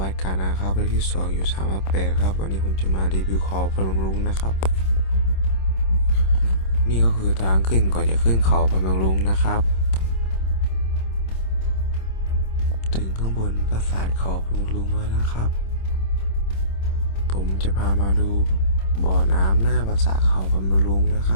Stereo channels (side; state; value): right; late; 26 ms